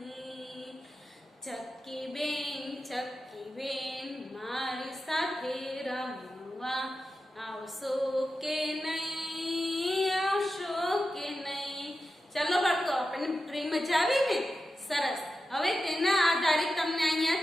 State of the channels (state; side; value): normal; both; correlation 0.91